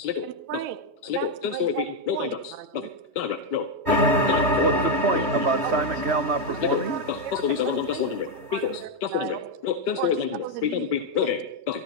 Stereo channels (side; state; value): left; late; 3.1 ms